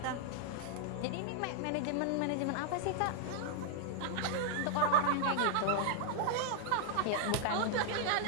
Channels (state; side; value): different; both; correlation -0.01